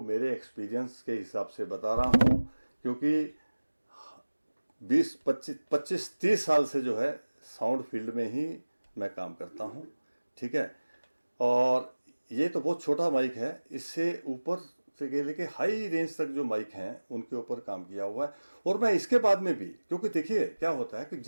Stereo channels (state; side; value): inverted; both; correlation -1.00